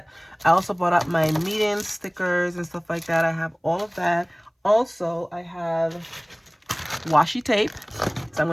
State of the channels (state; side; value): identical; both; correlation 1.00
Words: I also bought up my meeting stickers and stuff like that. I have all of that. Also, I have washi tape, so I'm